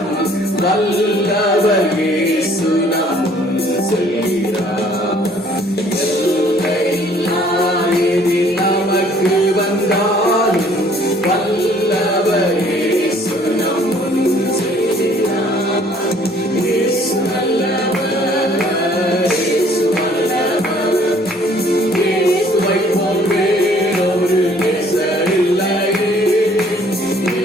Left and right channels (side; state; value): both; normal; correlation 0.58